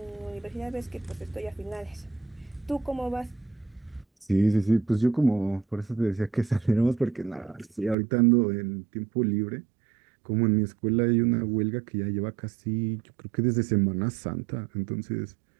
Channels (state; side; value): drops out; left; at 8.0 s